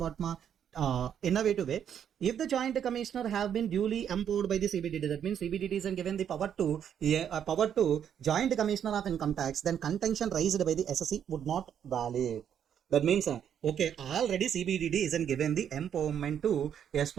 innovative way. If the Joint Commissioner have been duly empowered by the CBDT, that means CBDT is given the power to Joint Commissioner of Income Tax, then contention raised by the SSC would not valid. That means, okay, already CBDT isn't given the empowerment to, yes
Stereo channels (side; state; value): left; quieter; 8.9 dB